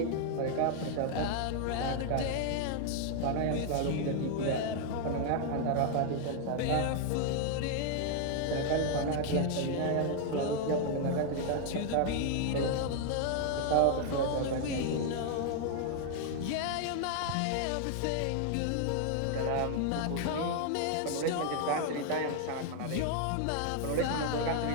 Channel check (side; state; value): both; different; correlation 0.00